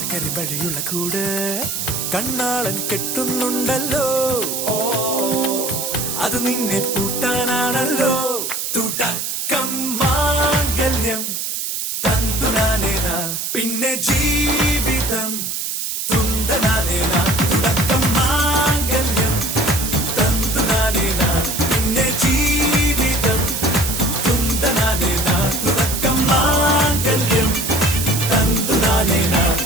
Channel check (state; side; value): noise; right; hiss, 3 dB below the sound